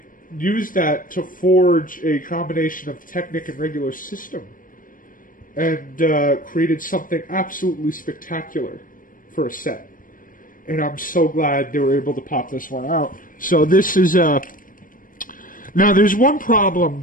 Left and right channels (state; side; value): late; right; 0.40 ms